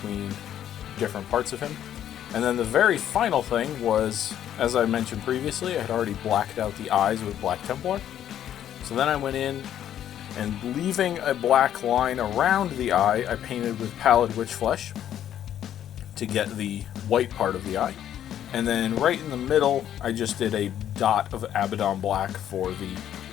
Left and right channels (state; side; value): quieter; right; 10.7 dB